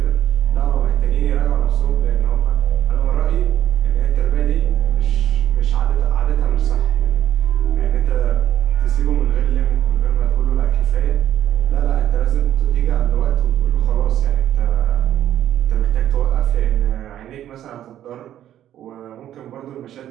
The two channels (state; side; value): quieter; left; 11.5 dB